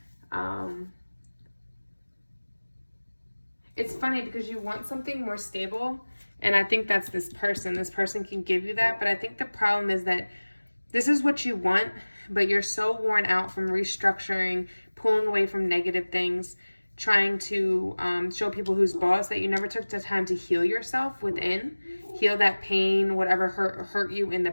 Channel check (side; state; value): both; inverted; correlation -1.00